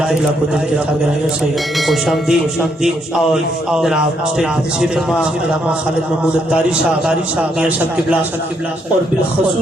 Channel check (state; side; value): normal; both; correlation 0.74